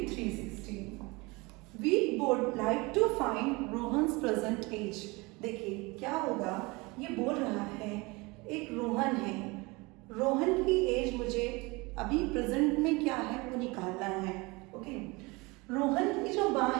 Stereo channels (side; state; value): left; quieter; 24.9 dB